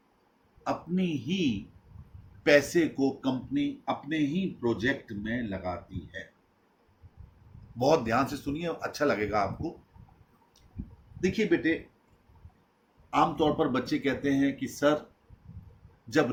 अपनी ही पैसे को कंपनी अपने ही प्रोजेक्ट में लगाती है। बहुत ध्यान से सुनिए, अच्छा लगेगा आपको। देखिए बेटे, आमतौर पर बच्चे कहते हैं कि सर, जब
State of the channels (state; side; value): identical; both; correlation 1.00